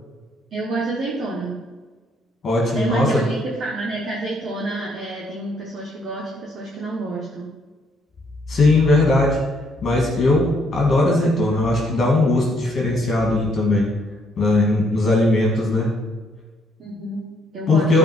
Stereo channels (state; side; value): normal; both; correlation 0.70